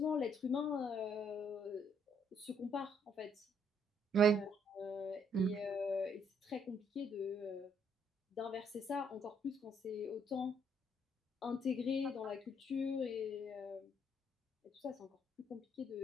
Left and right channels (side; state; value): both; normal; correlation 0.68